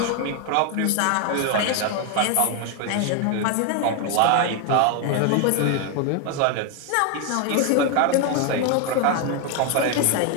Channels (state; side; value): different; both; correlation 0.01